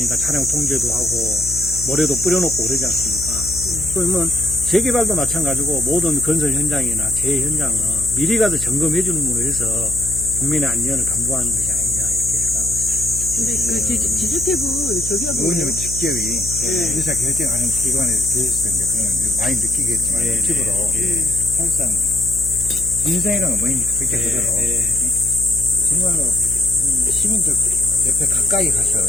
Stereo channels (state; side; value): noise; left; hum, 10 dB below the sound